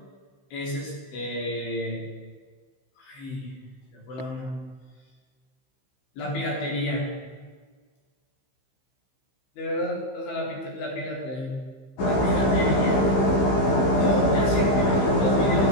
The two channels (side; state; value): right; late; 15 ms